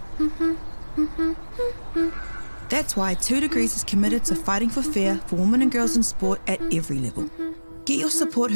That's why 2 Degrees is committed to fighting for fair for women and girls in sport at every level. Get your Support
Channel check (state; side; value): inverted; both; correlation -1.00